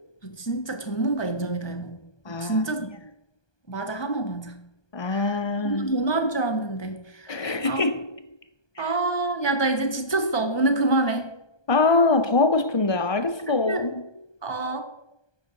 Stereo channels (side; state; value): right; late; 1.2 ms